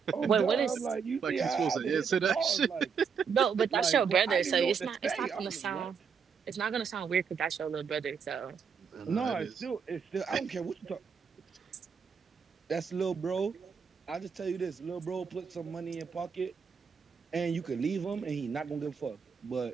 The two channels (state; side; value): quieter; left; 6.3 dB